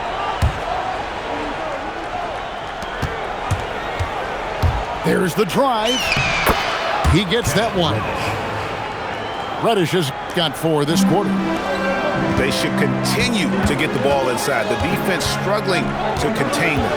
There's the drive. He gets that one. Reddish has got 4 this quarter. They should continue to get the ball inside. The defense struggling to contain them.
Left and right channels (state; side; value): identical; both; correlation 1.00